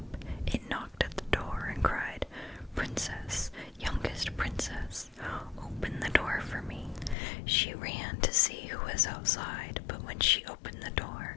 it knocked at the door and cried, "Princess, youngest princess, open the door for me." She ran to see who was outside, but when she opened the door,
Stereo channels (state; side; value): drops out; right; at 7.2 s